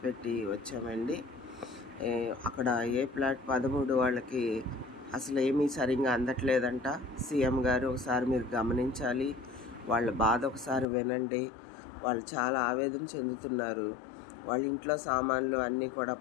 వచ్చామండి. అక్కడ ఏ ప్లాట్ 13 వాళ్ళకి అసలు ఏమీ సరిగ్గా అందట్లేదంట. సీఎం గారు ఒకసారి మీరు గమనించాలి, వాళ్ళ బాధ ఒకసారి వినండి. వాళ్ళు చాలా ఆవేదన చెందుతున్నారు. వాళ్ళ ఇంట్లో సామాన్లు అన్నీ కూడా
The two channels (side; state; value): right; drops out; at 10.9 s